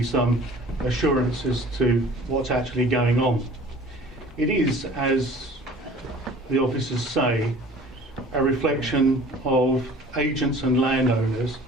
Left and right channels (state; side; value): normal; both; correlation 0.47